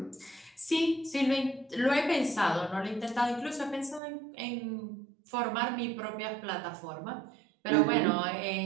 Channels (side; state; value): left; drops out; at 4.0 s